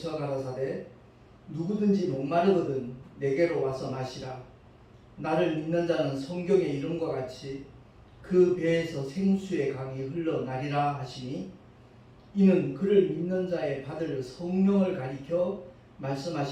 가라사대 누구든지 목마르거든 내게로 와서 마시라. 나를 믿는 자는 성경의 이름과 같이 그 배에서 생수의 강이 흘러나리라 하시니 이는 그를 믿는 자의 받을 성령을 가리켜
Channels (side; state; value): both; identical; correlation 1.00